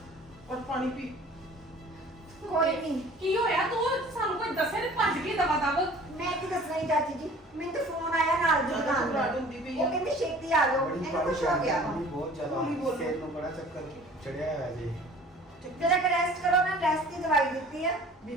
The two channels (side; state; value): both; normal; correlation 0.48